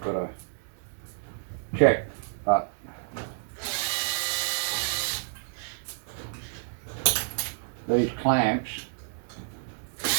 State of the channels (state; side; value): silent; left; 58 dB below the other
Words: got to check. But these clamps,